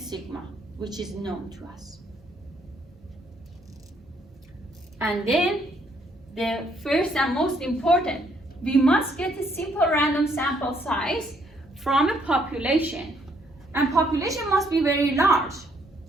which is known to us. And then the first and most important, we must get a simple random sample size from a population. And population must be very large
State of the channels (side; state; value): both; normal; correlation 0.69